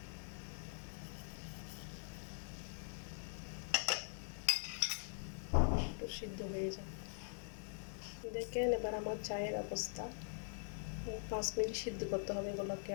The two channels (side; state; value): right; silent; digital silence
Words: একটু সিদ্ধ হয়ে যায়। দেখেন এবার আমার চায়ের অবস্থা। 5 মিনিট সিদ্ধ করতে হবে এগুলোকে,